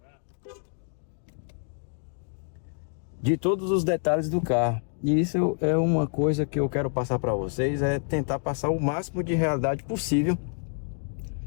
De todos os detalhes do carro. E isso é uma coisa que eu quero passar para vocês, é tentar passar o máximo de realidade possível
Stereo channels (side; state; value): right; silent; 58 dB below the other